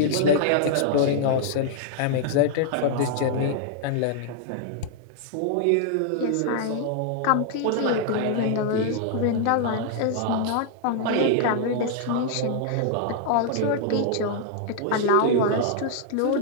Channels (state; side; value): different; both; correlation -0.01